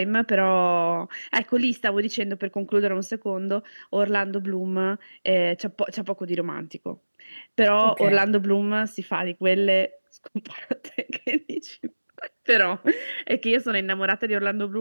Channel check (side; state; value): both; inverted; correlation -1.00